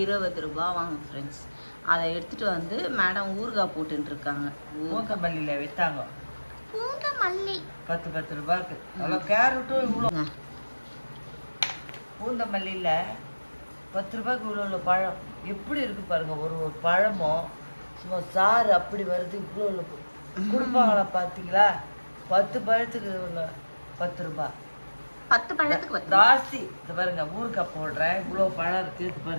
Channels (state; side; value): inverted; both; correlation -1.00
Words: 20 ரூபா வாங்க ஃப்ரெண்ட்ஸ். அதை எடுத்துட்டு வந்து மேடம் ஊறுகாய் போட்டுட்டு இருக்காங்க. பூந்தமல்லியில் விற்றாங்க. பூந்தமல்லி 10 ரூபாய்க்கு. அவ்வளோ கேரட்டும் இவ்வளோ. பூந்தமல்லியில் 10 ரூபாய்க்கு இவ்வளோ பழம் எப்படி இருக்கு பாருங்க. ஒரு பழமும் சும்மா சாறு அப்படி வருது. இவ்வளோ கொடுப்பாங்களா பார்த்தீங்களா? 10 பழத்துக்கு 10 ரூபாய். 10 பழத்துக்கு ஜாஸ்தி. இது பாருங்க, ஊறுகாய் போடுறேன், இவ்வளோ பழம் இருக்கு. இது